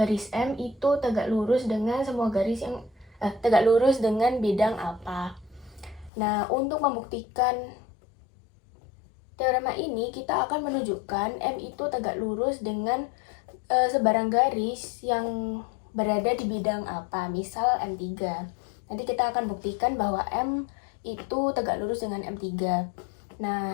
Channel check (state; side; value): drops out; right; at 6.1 s